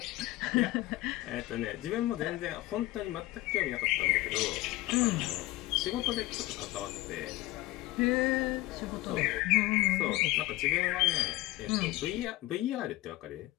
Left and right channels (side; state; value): right; quieter; 18.5 dB